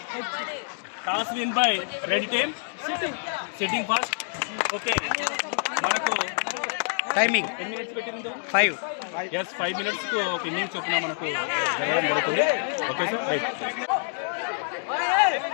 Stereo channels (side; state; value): right; silent; digital silence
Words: Toss win by red team. Sitting first. Okay, మనకు టైమింగ్ ఎన్ని మినిట్స్ పెట్టింది? 5. ఎస్, 5 మినిట్స్కు ఒక ఇన్నింగ్స్ చొప్పున మనకు జరగడం జరుగుతుంది. Okay sir, right.